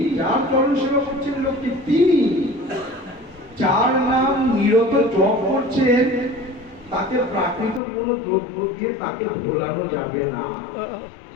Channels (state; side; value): drops out; right; at 7.8 s